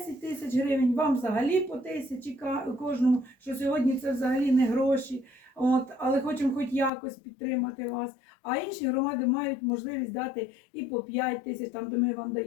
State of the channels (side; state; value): right; drops out; at 6.9 s